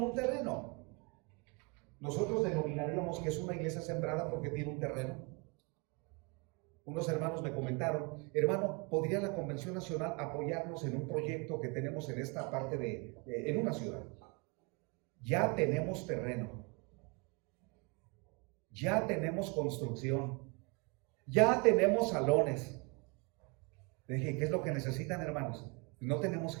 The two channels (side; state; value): left; quieter; 30.3 dB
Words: un terreno. Nosotros denominaríamos que es una iglesia sembrada porque tiene un terreno. Unos hermanos me comentaron, hermano, ¿podría la Convención Nacional apoyarnos en un proyecto que tenemos en esta parte en una ciudad? Ya tenemos terreno, ya tenemos construcción, ya tenemos salones. Le dije, ¿qué es lo que necesitan, hermanos? No tenemos